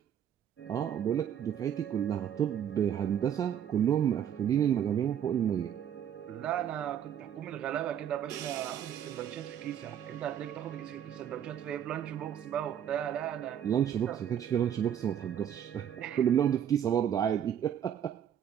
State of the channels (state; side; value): quieter; left; 9.5 dB